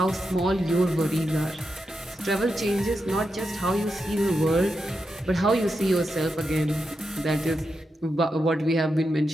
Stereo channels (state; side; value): normal; both; correlation 0.87